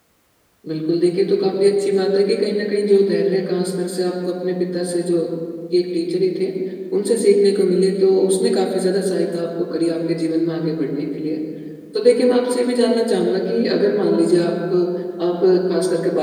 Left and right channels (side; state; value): both; identical; correlation 1.00